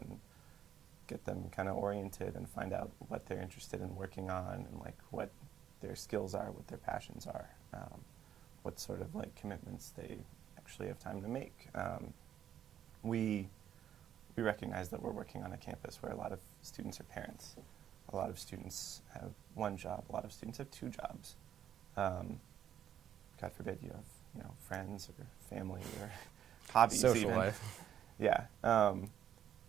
get them kind of oriented and find out what they're interested in working on and what their skills are, what their passions are, what sort of commitments they actually have time to make. We recognize that we're working on a campus where a lot of students are parents. A lot of students have one job. A lot of students have two jobs. God forbid you have friends or family or hobbies. Social even. life. Yeah.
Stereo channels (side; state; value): left; quieter; 10.2 dB